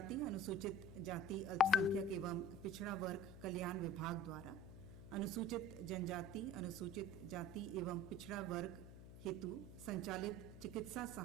अनुसूचित जाति, अल्पसंख्यक एवं पिछड़ा वर्ग कल्याण विभाग द्वारा अनुसूचित जनजाति, अनुसूचित जाति एवं पिछड़ा वर्ग हेतु संचालित चिकित्सा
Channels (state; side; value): noise; left; hum, 13 dB below the sound